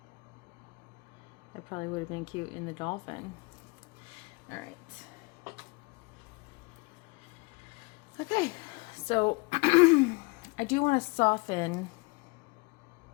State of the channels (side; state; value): right; quieter; 27.4 dB